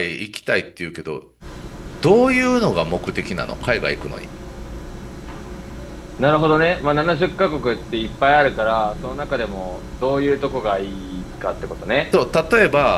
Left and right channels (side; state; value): both; identical; correlation 1.00